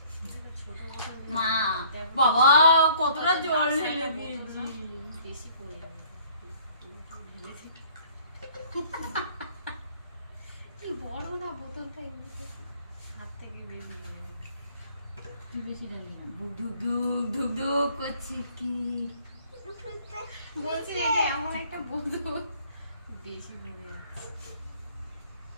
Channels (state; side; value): inverted; both; correlation -0.55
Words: মা বাবা কতটা জল ঢেলে দিয়েছি, বেশি করে কি বড় না বোতলটা, এমনিতে হাত থেকে বেরিয়ে যাবে। তুই বেশি ঢালি না, ধুক ধুক ধুক ধুক করছি কি বলছি, এটা এমন একটা বোতল বেশি পড়ে যাচ্ছে।